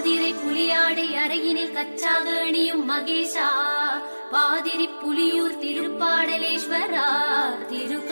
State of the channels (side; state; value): both; inverted; correlation -1.00